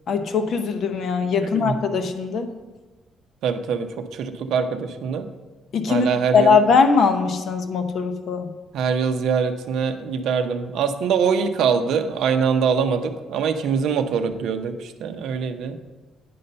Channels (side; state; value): both; normal; correlation 0.58